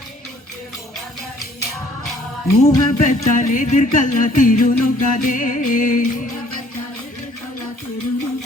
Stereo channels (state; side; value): normal; both; correlation 0.59